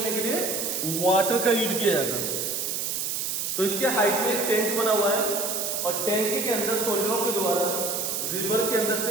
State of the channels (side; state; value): right; noise; hiss, 1 dB below the sound